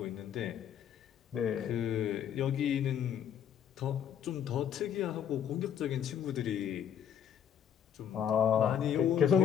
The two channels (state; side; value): quieter; right; 8.9 dB